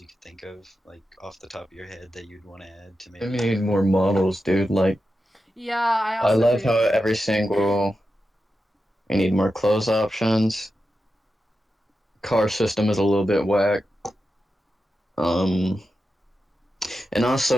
you could think of, like off the top of your head, that you'd want to add to We maybe? need more models, dude. Like, Yeah, I I also love agree how with that. every single. We need more clothes options. Car system is a little bit whack. And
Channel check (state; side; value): normal; both; correlation 0.90